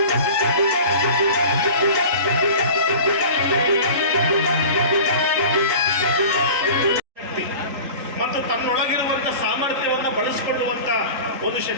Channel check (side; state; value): left; late; 3.9 ms